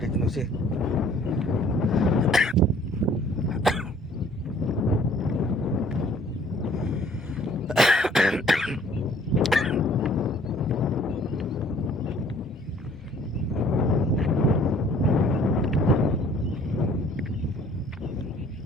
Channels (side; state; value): both; normal; correlation 0.56